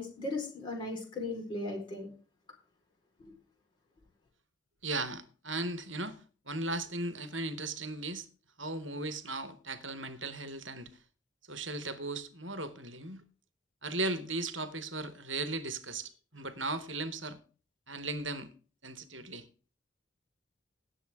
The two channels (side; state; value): both; normal; correlation 0.18